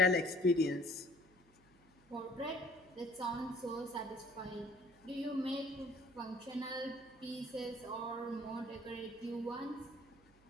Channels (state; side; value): noise; right; hum, 29 dB below the sound